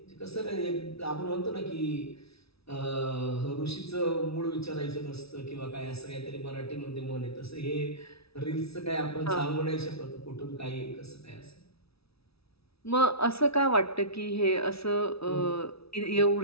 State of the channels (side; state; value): right; late; 0.77 ms